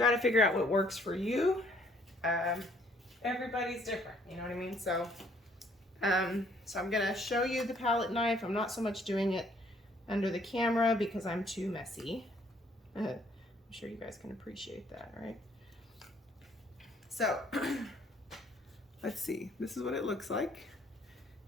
to figure out what works for you. Everybody's different, you know what I mean? So, so I'm gonna show you the palette knife. I'm not so much doing it under the camera because I'm too messy. I'm sure you guys can appreciate that, right? So let's see, this is what it looks like.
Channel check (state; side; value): normal; both; correlation 0.63